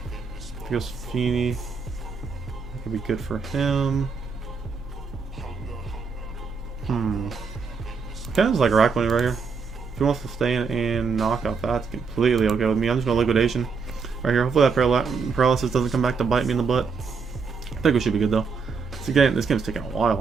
He goes Feeny. I Could be good for him. Kind of like Araquanid right here. If he wants to stay in and knock out, that's completely okay with me. I'm just going to liquidation right here. Hopefully that paralysis doesn't come back to bite me in the butt. I think we should be good though. This game's taking a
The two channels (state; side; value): quieter; left; 5.2 dB